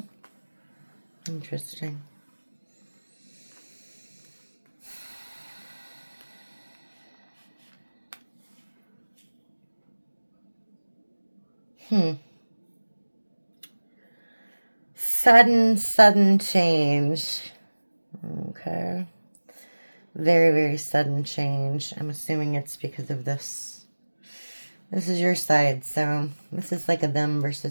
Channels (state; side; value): inverted; both; correlation -1.00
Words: Interesting. Sudden change. Okay. Very, very sudden change. I'm assuming it's because of this. This is your side, so this is like a them